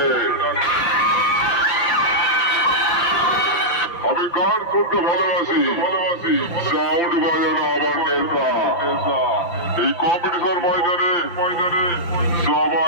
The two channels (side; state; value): right; late; 5.8 ms